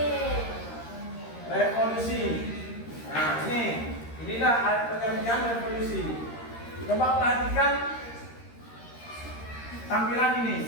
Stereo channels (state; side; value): late; right; 13 ms